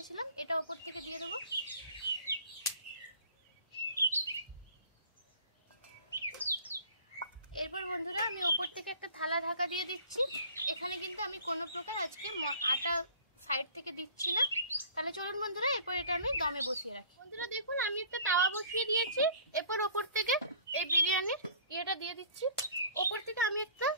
এটা ওপর থেকে দিয়ে দেবো। এরপর বন্ধুরা আমি ওপর থেকে একটা থালা ঢাকা দিয়ে দিচ্ছি। এখানে কিন্তু আমি কোনো প্রকার আজকে আটা সাইড থেকে দিচ্ছি না। তাহলে চলুন বন্ধুরা এরপর এটা আমি দমে বসিয়ে রাখি। বন্ধুরা দেখুন আমি একটা তাওয়া বসিয়ে দিয়েছি। এরপর ওপর থেকে এই বিরিয়ানির ইয়েটা দিয়ে দিচ্ছি। ওপর থেকে আমি একটা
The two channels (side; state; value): both; inverted; correlation -0.49